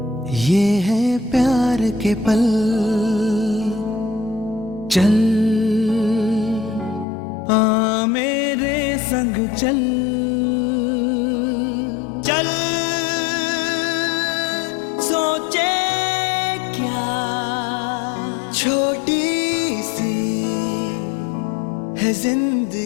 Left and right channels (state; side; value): drops out; right; at 7.1 s